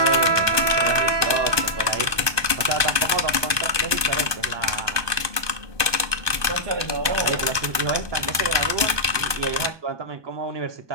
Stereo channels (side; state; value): left; late; 1.2 ms